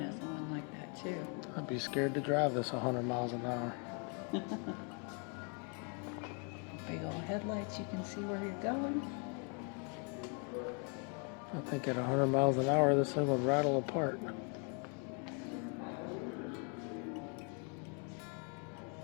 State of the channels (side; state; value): right; quieter; 38.4 dB